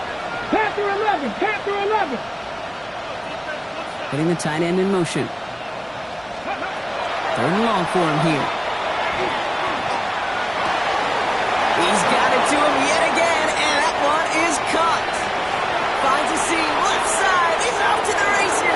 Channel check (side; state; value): both; identical; correlation 1.00